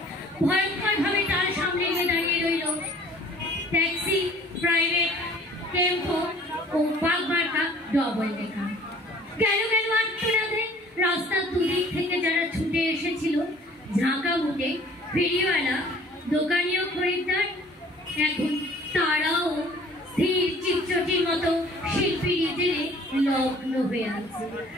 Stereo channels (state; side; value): normal; both; correlation 0.53